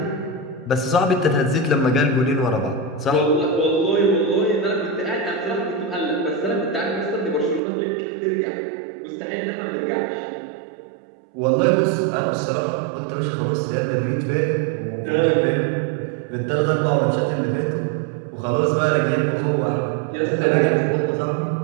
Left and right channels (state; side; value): drops out; left; at 7.6 s